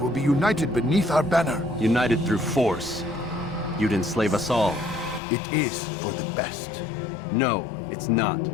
be united beneath our banner. United through force. You'd enslave us all. It is for the best. No, it's not.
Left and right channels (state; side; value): drops out; right; at 5.2 s